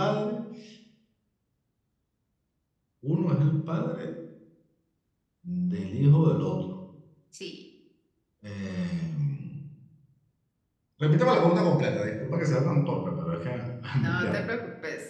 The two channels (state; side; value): identical; both; correlation 1.00